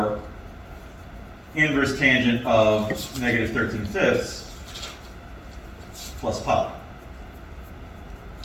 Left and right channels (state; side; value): identical; both; correlation 1.00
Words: inverse tangent of negative 13/5 plus pi.